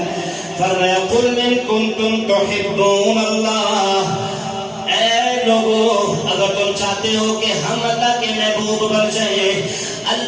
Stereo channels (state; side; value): identical; both; correlation 1.00